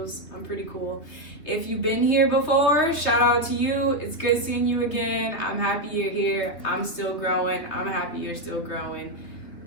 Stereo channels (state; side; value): late; right; 3.3 ms